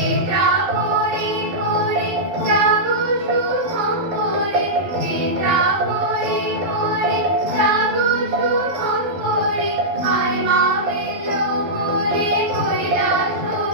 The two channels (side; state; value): left; late; 12 ms